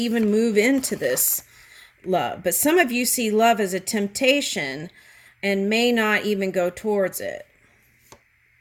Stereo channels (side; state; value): both; identical; correlation 1.00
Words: move into this love. But some of you see love as a temptation and may not even go towards it.